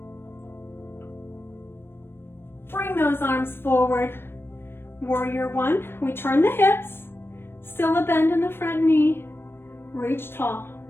Bring those arms forward. Warrior one, we turn the hips, still a bend in the front knee, reach tall.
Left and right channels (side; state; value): right; late; 0.11 ms